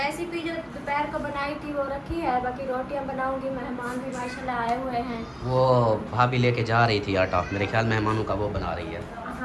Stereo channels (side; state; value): both; identical; correlation 1.00